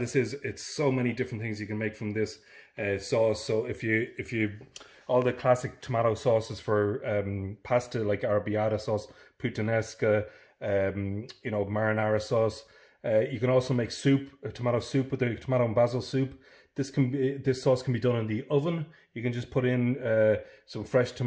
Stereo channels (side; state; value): both; identical; correlation 1.00